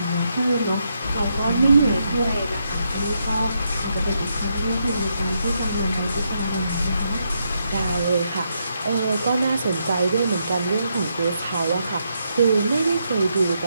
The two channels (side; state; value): both; inverted; correlation -0.80